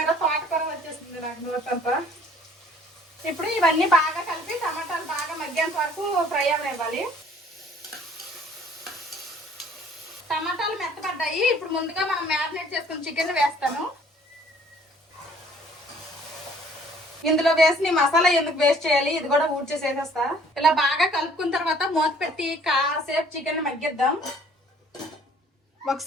తోటకూర వచ్చేసింది నాకు నోటంతా. ఇప్పుడు ఇవన్నీ బాగా కలిపి టమాటాలు బాగా మగ్గేంత వరకు ఫ్రై అవనివ్వాలి. టమాటాలు మెత్తపడ్డాయి. ఇప్పుడు ముందుగా మనం మ్యారినేట్ చేసుకుని చికెన్ వేస్తాను. ఇందులో వేసి మసాలా ఎందుకు వేస్ట్ చేయాలి, ఇది కూడా ఊడ్చేసేసేస్తా. ఇలా బాగా కలుపుకున్న తర్వాత మూత పెట్టి కాసేపు చికెన్ మగ్గిద్దాం.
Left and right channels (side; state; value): both; normal; correlation 0.57